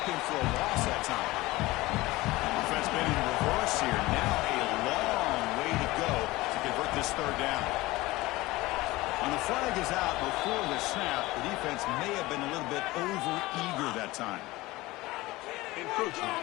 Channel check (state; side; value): quieter; right; 19.8 dB